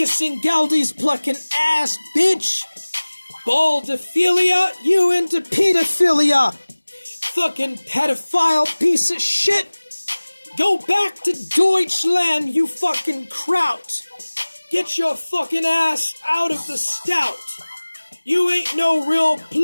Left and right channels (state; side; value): inverted; both; correlation -1.00